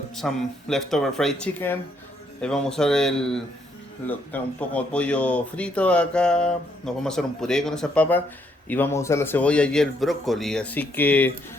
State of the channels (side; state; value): both; normal; correlation 0.72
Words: some leftover fried chicken. Vamos a usar un poco de pollo frito acá. Nos vamos a hacer un puré con esas papas y vamos a usar la cebolla y el brócoli. Así que